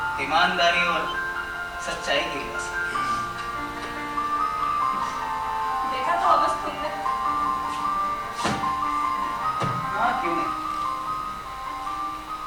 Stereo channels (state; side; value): identical; both; correlation 1.00